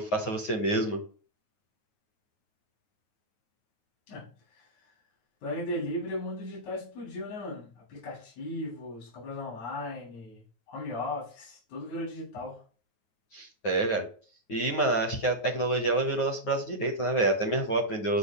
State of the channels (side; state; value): right; late; 9.4 ms